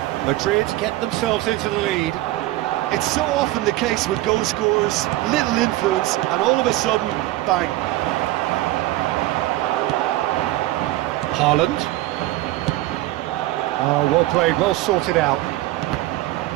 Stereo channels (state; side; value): quieter; left; 16.8 dB